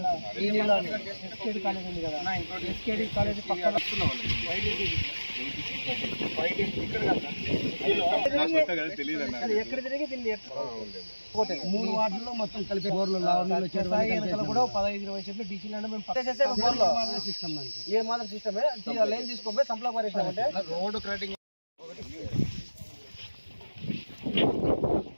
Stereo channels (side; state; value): both; inverted; correlation -1.00